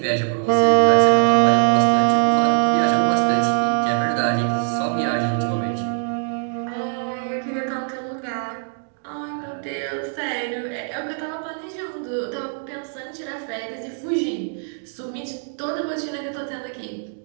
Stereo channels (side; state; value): left; silent; digital silence